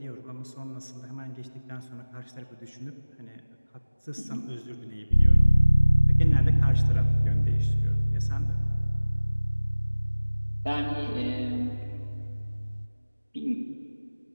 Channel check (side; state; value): both; inverted; correlation -1.00